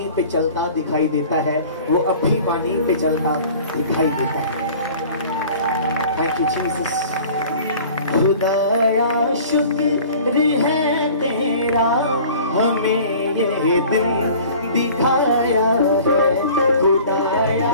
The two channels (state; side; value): inverted; both; correlation -0.46